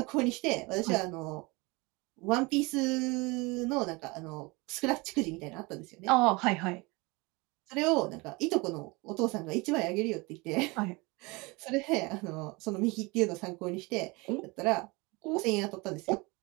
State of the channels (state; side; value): quieter; left; 25.6 dB